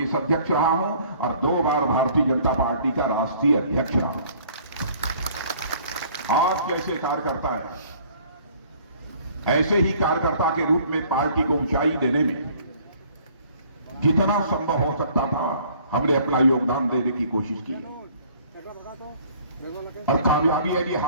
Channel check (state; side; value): inverted; both; correlation -0.56